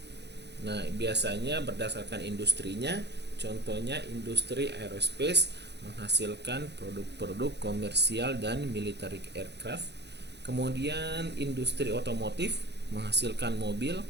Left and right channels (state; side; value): late; left; 0.50 ms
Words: Nah, biasanya berdasarkan industrinya, contohnya industri aerospace menghasilkan produk-produk komersial dan military aircraft. Kemudian industri otomotif menghasilkan mobil,